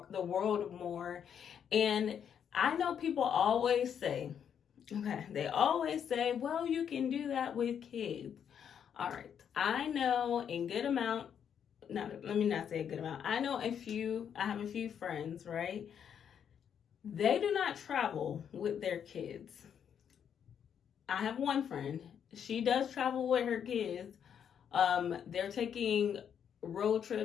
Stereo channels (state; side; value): quieter; right; 8.3 dB